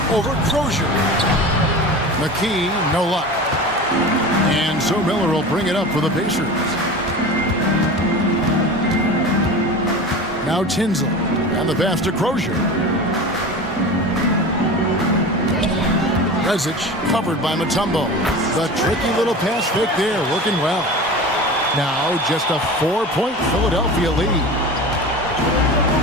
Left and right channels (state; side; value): normal; both; correlation 0.33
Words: over Crozier. McKee, no luck. And so Miller will bring it up for the Pacers. Now Tinsley and the pass to Crozier. Rezic covered by Mutombo. The tricky little pass fake there, working well. Now just a 4-point Philadelphia lead.